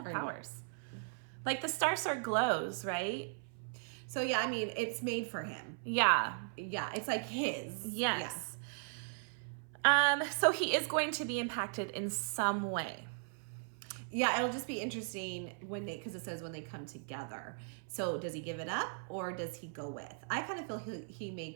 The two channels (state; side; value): silent; left; 53 dB below the other